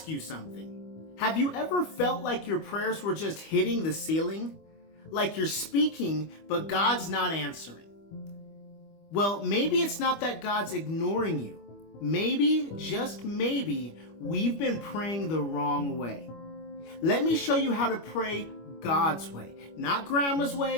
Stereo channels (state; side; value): late; right; 25 ms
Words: you something. Have you ever felt like your prayers were just hitting the ceiling? Like you're speaking, but God's not answering? Well, maybe it's not that God's ignoring you. Maybe, just maybe, we've been praying the wrong way. Let me show you how to pray God's way. Not grandma's